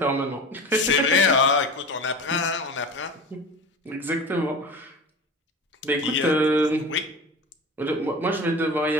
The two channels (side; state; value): both; normal; correlation 0.32